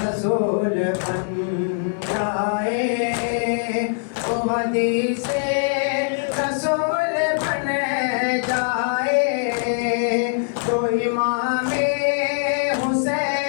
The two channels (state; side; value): silent; right; digital silence